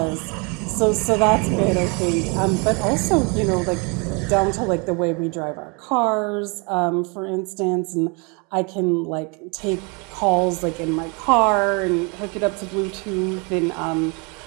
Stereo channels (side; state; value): left; quieter; 32.0 dB